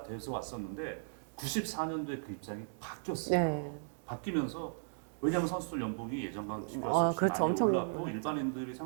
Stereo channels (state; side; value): silent; left; digital silence